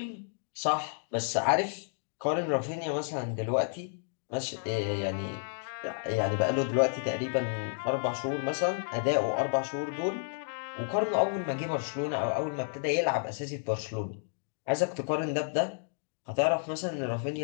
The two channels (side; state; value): right; silent; digital silence